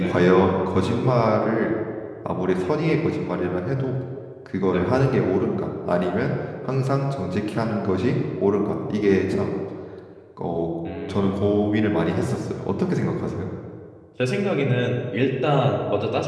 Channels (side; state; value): both; identical; correlation 1.00